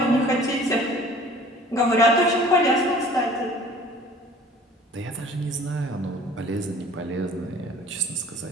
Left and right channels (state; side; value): normal; both; correlation 0.49